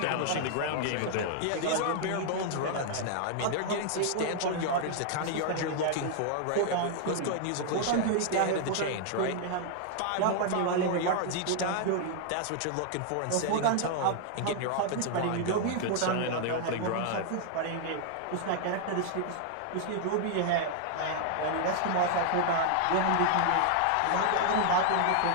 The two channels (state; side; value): different; both; correlation -0.01